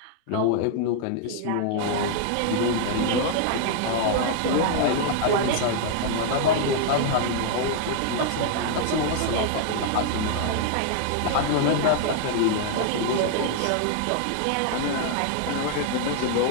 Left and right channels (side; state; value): both; different; correlation 0.00